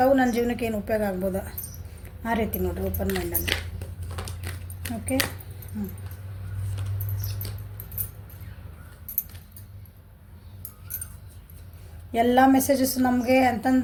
ನನ್ನ ಜೀವನಕ್ಕೆ ಏನು ಉಪಯೋಗ ಆಗ್ಬೋದು ಆ ರೀತಿ ನೋಡಿರಿ, ಓಪನ್ ಮೈಂಡಲ್ಲಿ. ಓಕೆ, ಎಲ್ಲ ಮೆಸೇಜಸ್ ನಮಗೆ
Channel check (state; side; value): identical; both; correlation 1.00